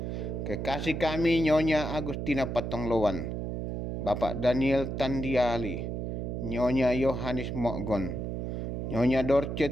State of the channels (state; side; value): noise; right; hum, 3 dB below the sound